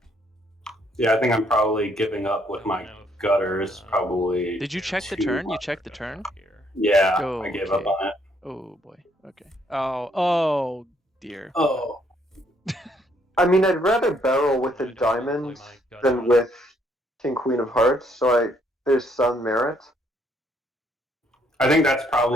Yeah, I think I'm probably giving up with my gutters. Probably. Did you check the too turn? You much. checked the turn? Yeah, Oh, I gave up okay. on it. Oh boy. Okay. Oh dear. Oh. I mean, I'd rather barrel with a diamond than with King Queen of Hearts, so there's some merit. I think that's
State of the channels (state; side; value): normal; both; correlation 0.69